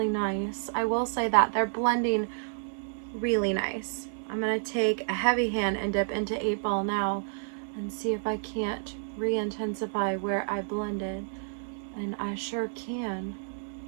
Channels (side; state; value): left; silent; 58 dB below the other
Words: nice. I will say that they're blending really nice. I'm gonna take a heavy hand and dip into 8 Ball now and see if I can't re-intensify where I blended. And I sure can.